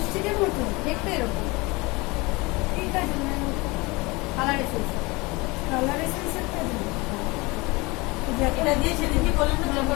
মতো দেখতে এরকম ঠিক আছে ম্যাম কালার এসেছে। কালার এসেন্সের কাজ এটা দিয়ে সেদিন কি বললেন না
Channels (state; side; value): quieter; right; 24.6 dB